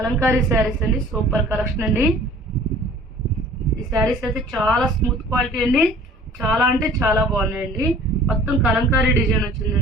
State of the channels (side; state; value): both; normal; correlation 0.49